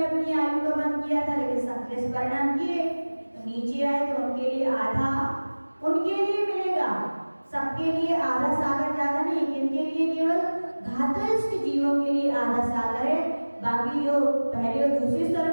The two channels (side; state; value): both; inverted; correlation -1.00